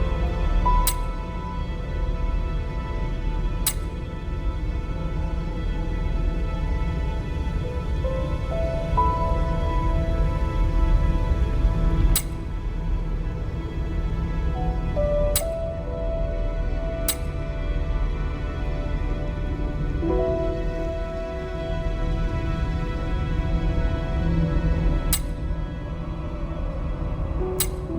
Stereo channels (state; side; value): identical; both; correlation 1.00